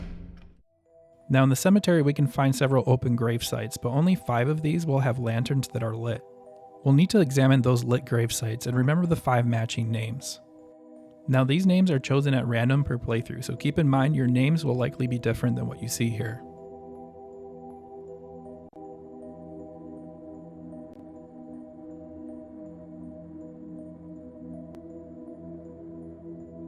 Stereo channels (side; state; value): both; identical; correlation 1.00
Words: Now in the cemetery we can find several open grave sites, but only 5 of these will have lanterns that are lit. We'll need to examine those lit grave sites and remember the 5 matching names. Now these names are chosen at random per playthrough, so keep in mind your names will likely be different than what you see here.